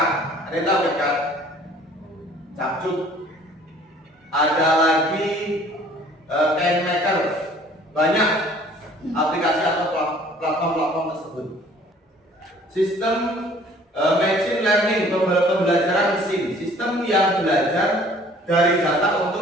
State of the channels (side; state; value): both; normal; correlation 0.53